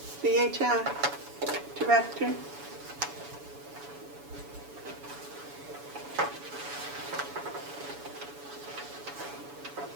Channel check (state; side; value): late; left; 7.0 ms